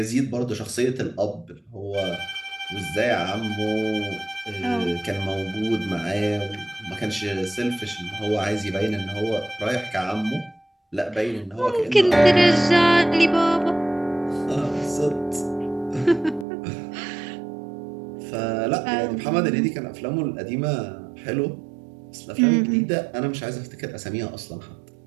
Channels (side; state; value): left; drops out; at 16.4 s